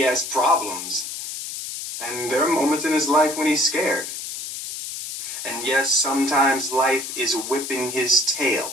has problems. And there are moments in his life when he's scared. And yes, sometimes life is whipping his tail.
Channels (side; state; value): left; noise; hiss, 7 dB below the sound